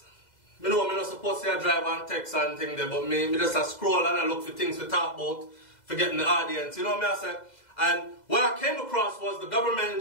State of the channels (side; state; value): right; late; 2.0 ms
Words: Me know me not supposed to drive and text and thing there, but me just a scroll and I look for things to talk about, for getting the audience. You know what I say? And what I came across was the government in